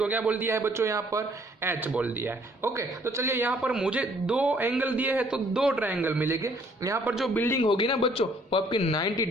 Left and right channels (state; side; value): normal; both; correlation 0.62